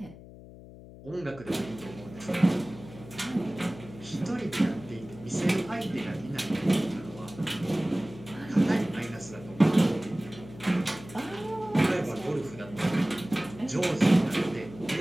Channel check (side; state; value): left; noise; hum, 17 dB below the sound